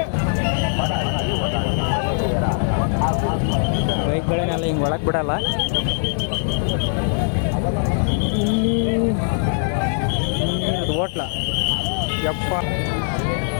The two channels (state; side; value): silent; right; digital silence